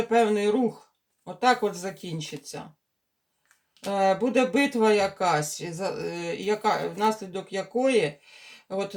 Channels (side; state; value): both; identical; correlation 1.00